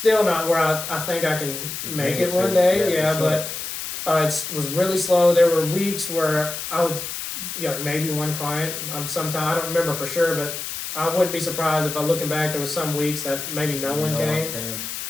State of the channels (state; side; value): noise; left; hiss, 6 dB below the sound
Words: not where I think I can make it one day. Sure. It was really slow. There were weeks where I would, maybe one client. Sometimes I don't remember for sure, but I wouldn't be surprised if looking back, there was some weeks that maybe no one came.